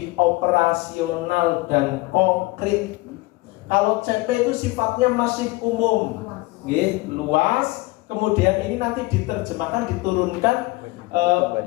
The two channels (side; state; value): right; quieter; 21.8 dB